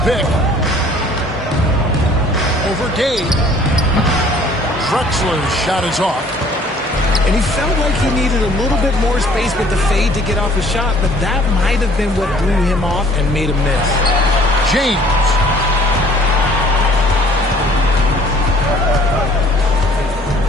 pick. Over Gay. Drexler's shot is off. And he felt like he needed a little bit more space with the fade to get off a shot, but that might have been what threw him off and made him miss. James.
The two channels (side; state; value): both; normal; correlation 0.55